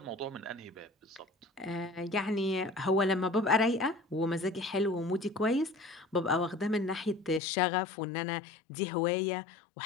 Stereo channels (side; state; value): right; drops out; at 7.4 s